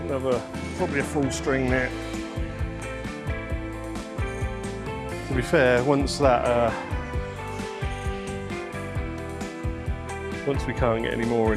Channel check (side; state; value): both; identical; correlation 1.00